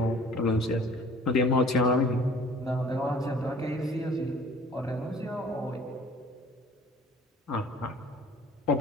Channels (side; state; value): both; normal; correlation 0.50